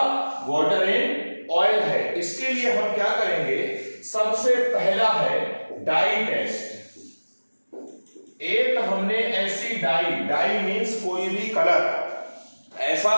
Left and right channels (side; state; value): both; inverted; correlation -1.00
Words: वाटर इन ऑयल है? इसके लिए हम क्या करेंगे? सबसे पहला है डाई टेस्ट। एक हमने ऐसी डाई मीन्स कोई भी कलर, ऐसा